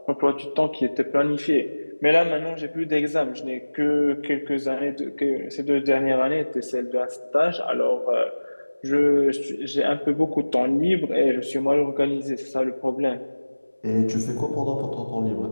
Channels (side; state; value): both; inverted; correlation -1.00